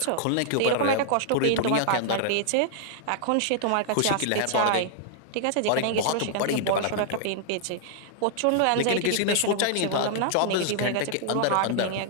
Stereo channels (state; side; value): different; both; correlation -0.01